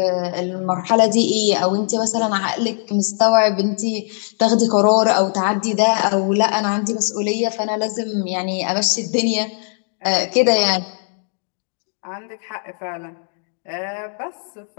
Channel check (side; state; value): right; silent; 57 dB below the other